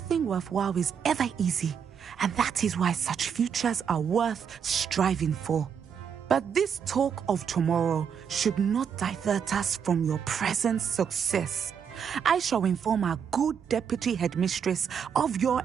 worthwhile is ever easy, and that is why such futures are worth striving for. But this talk of tomorrow should not divert us from your present success. I shall inform our good deputy headmistress of your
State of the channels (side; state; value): left; quieter; 7.4 dB